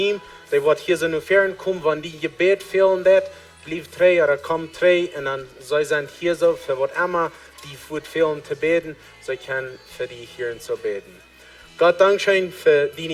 der wird hier so nur fern kommen, wenn die Gebet fehlen wird, blieb 3 oder kommt 3 und dann sie sind hier so, für was immer die wird fehlen zu beten, sie können für die hier zu beten. Gott Dankeschön für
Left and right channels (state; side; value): identical; both; correlation 1.00